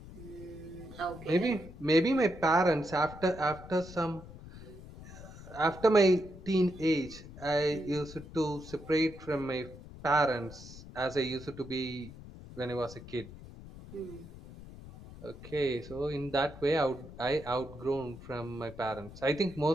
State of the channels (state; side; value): noise; left; rumble, 15 dB below the sound